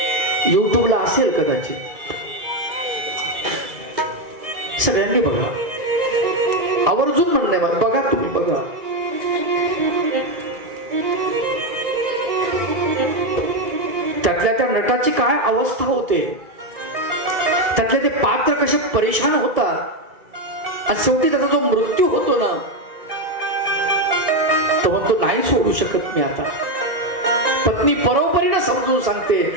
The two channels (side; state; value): left; late; 1.9 ms